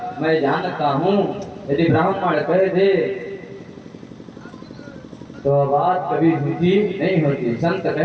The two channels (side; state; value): both; identical; correlation 1.00